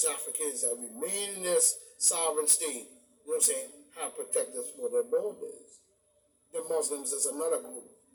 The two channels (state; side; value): identical; both; correlation 1.00